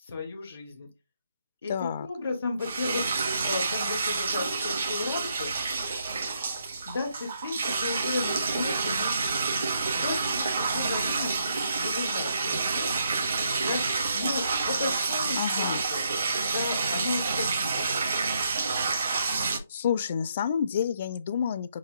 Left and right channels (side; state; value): both; inverted; correlation -0.75